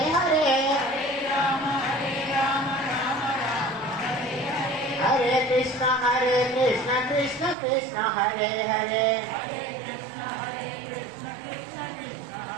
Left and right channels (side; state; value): left; drops out; at 7.6 s